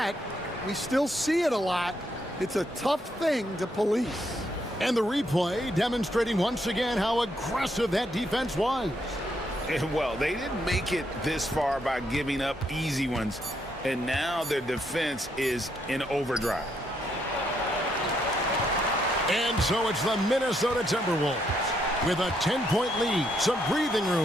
we still see it a lot. It's a tough thing to police. And the replay demonstrating once again how aggressive that defense was. And well, they didn't make it this far by giving up easy ones. And now their defense is in overdrive. And so it's the Minnesota Timberwolves with a 10-point lead. Some breathing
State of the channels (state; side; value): normal; both; correlation 0.75